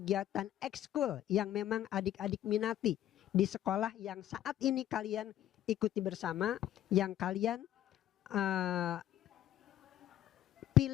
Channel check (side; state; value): right; quieter; 12.3 dB